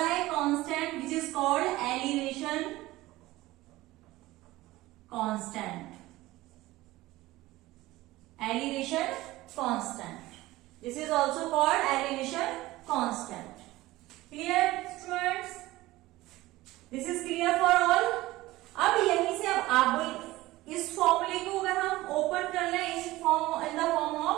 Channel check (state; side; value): quieter; left; 18.1 dB